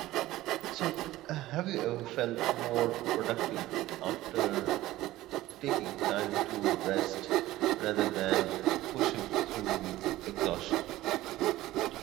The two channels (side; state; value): left; quieter; 16.3 dB